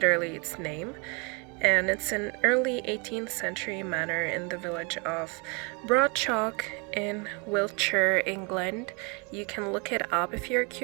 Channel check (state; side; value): quieter; left; 32.2 dB